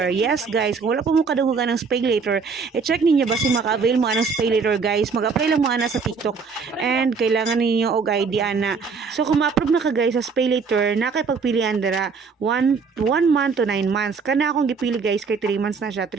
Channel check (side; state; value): left; quieter; 5.2 dB